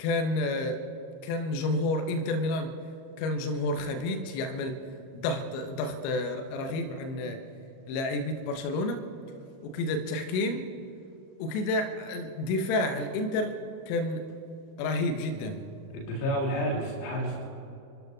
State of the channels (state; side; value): late; right; 38 ms